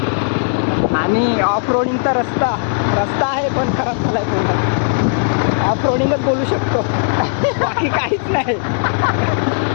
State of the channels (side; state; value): right; silent; digital silence